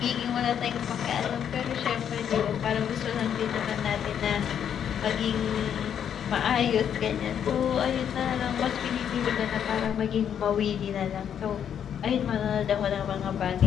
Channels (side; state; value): right; quieter; 8.8 dB